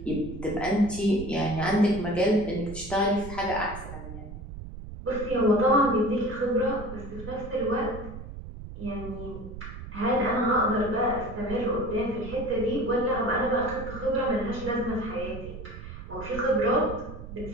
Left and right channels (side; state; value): right; noise; rumble, 11 dB below the sound